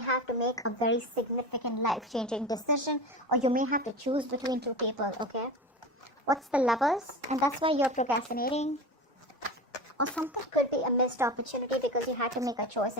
to make a very significant life-changing decision, or you may have to choose between two people, okay? What's the Lovers? And that's why you're procrastinating. Or something could be a missed opportunity because you had to make a choice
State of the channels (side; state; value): both; normal; correlation 0.28